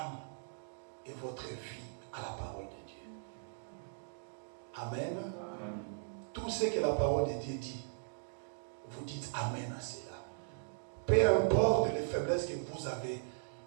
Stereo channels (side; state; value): left; silent; digital silence